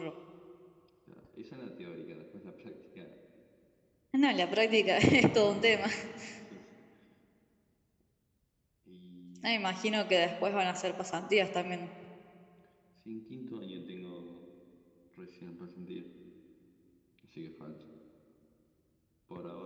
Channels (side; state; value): both; identical; correlation 1.00